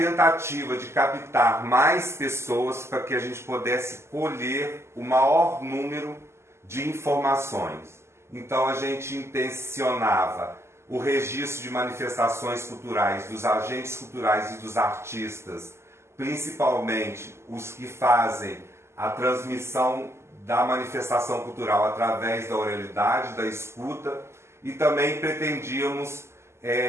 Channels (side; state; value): left; late; 0.13 ms